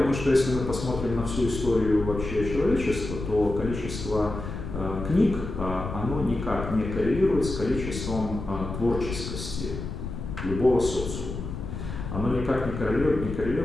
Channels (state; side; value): noise; left; rumble, 7 dB below the sound